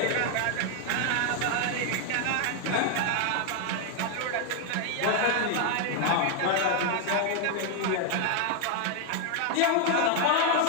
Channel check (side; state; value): both; different; correlation 0.00